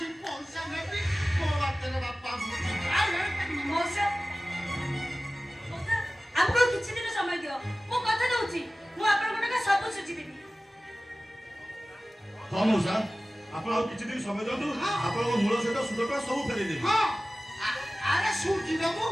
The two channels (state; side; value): normal; both; correlation 0.97